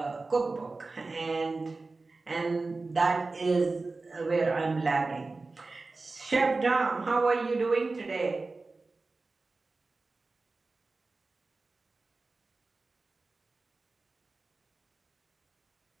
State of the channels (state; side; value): quieter; left; 3.6 dB